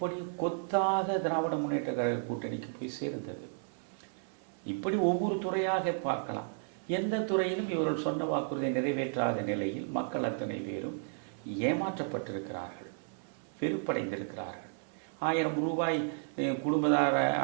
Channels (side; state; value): left; silent; 55 dB below the other